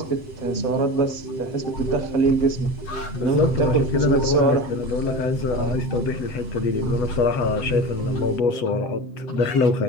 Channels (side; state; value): right; late; 7.9 ms